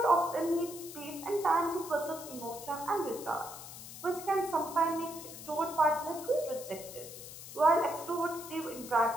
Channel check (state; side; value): noise; left; hiss, 13 dB below the sound